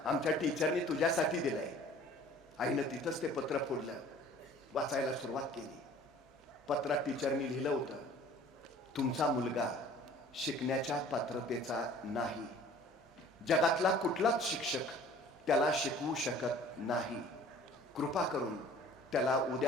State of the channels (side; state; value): both; normal; correlation 0.50